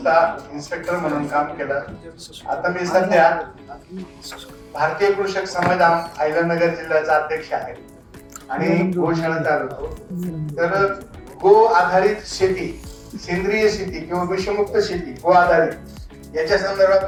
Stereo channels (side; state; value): both; identical; correlation 1.00